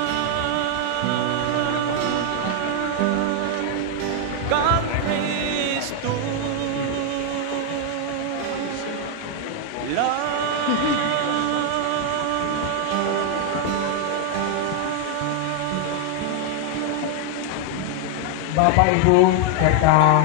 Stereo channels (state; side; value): different; both; correlation 0.00